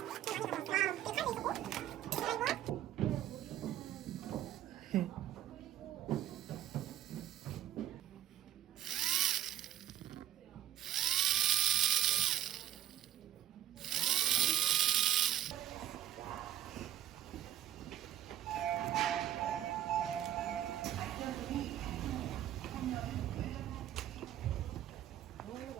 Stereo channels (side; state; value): left; quieter; 12.0 dB